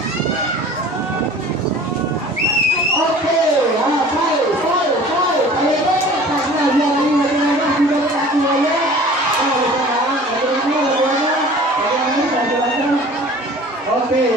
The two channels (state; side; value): normal; both; correlation 0.45